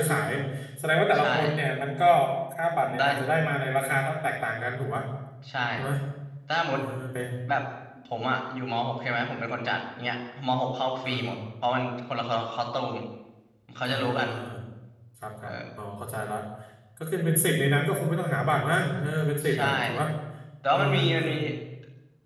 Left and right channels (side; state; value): both; identical; correlation 1.00